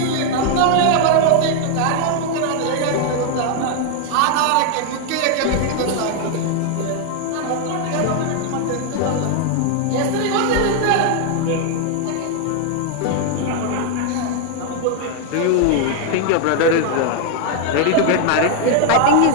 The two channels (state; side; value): different; both; correlation 0.00